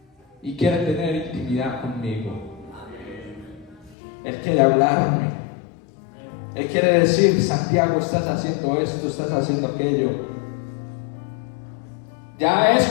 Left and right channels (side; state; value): right; drops out; at 4.0 s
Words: y quiere tener intimidad conmigo. Él quiere hablarme. Él quiere decir: Santiago, estás haciendo esto, estás haciendo aquello. Ya es